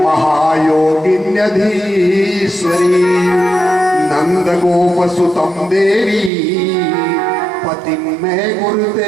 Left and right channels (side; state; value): left; drops out; at 6.3 s